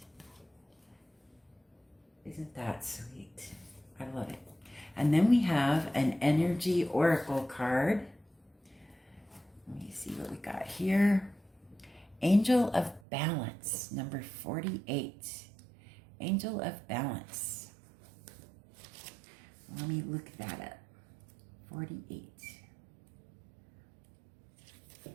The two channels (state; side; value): drops out; left; at 13.0 s